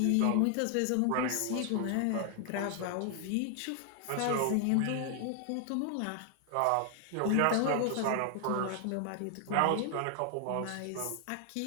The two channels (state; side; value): different; both; correlation 0.00